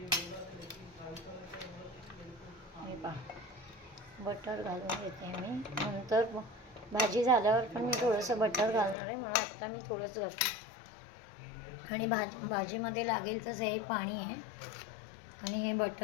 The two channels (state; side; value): drops out; right; at 9.0 s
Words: हे पहा, बटर घालून घेते मी. नंतर भाजी झाल्यावर पण मी थोडंसं बटर घालणार आहे, म्हणून आत्ता मी थोडंसं घालते. आणि भाजीमध्ये लागेल तसं हे पाणी आहे आणि हे